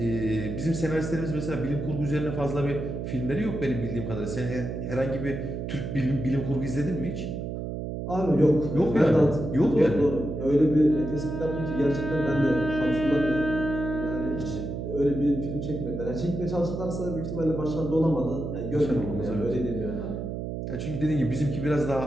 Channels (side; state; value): right; noise; hum, 5 dB below the sound